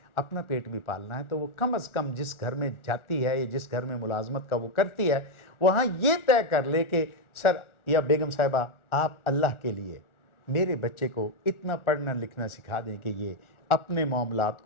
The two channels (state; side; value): late; right; 1.4 ms